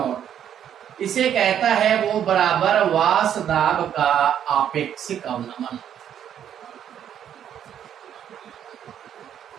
इसे कहता है वो बराबर वाष्प दाब का आपेक्षिक अवनमन।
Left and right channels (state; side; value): quieter; left; 9.7 dB